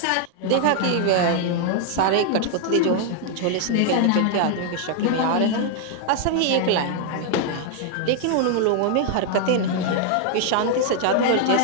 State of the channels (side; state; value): both; different; correlation 0.00